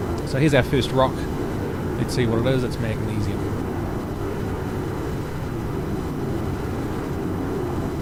So here's our first rock. Let's see what it is. It's magnesium.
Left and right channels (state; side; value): identical; both; correlation 1.00